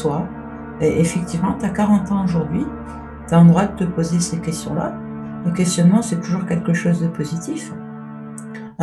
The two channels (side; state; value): both; identical; correlation 1.00